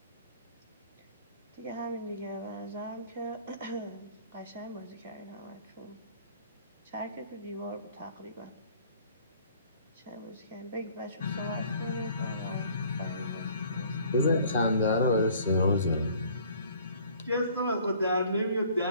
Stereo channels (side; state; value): both; inverted; correlation -0.55